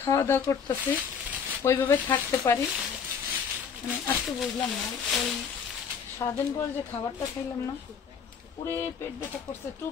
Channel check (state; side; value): quieter; right; 6.7 dB